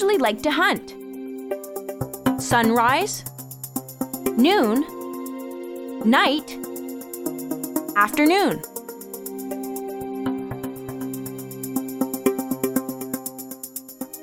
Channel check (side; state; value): both; identical; correlation 1.00